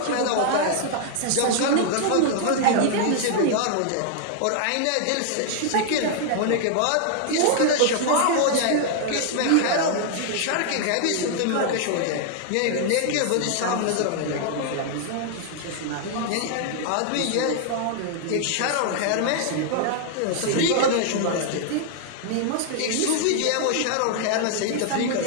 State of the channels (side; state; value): both; different; correlation 0.00